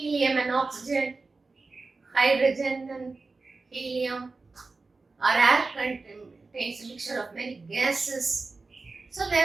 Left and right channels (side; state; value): left; quieter; 3.8 dB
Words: and oxygen, hydrogen and helium, or air contains a mixture of many gases. So they